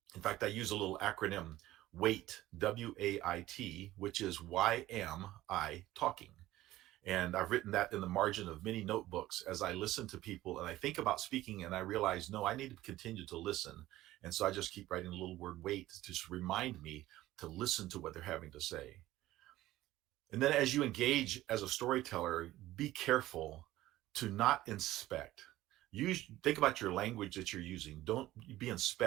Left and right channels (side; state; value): left; quieter; 15.8 dB